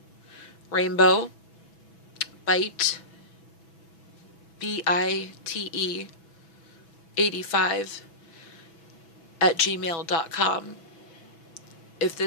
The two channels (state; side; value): late; right; 6.1 ms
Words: rainbow bite BITE 85 @gmail.com. If